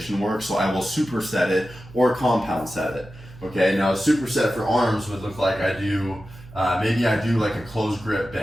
work, so I will superset it or compound set it. Okay, now a superset for arms would look like maybe I do like a closed grip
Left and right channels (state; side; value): noise; right; hum, 19 dB below the sound